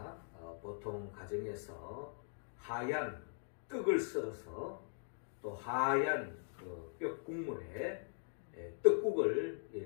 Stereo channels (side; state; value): right; silent; digital silence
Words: 보통 가정에서 하얀 떡을 썰어서 또 하얀 그 뼈국물에 떡국을